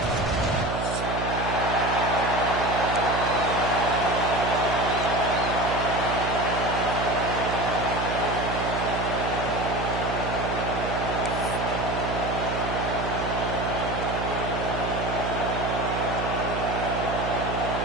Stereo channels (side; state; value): right; noise; hum, 3 dB below the sound